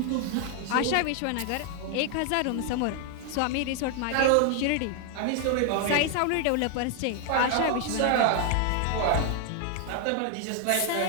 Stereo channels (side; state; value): both; different; correlation 0.00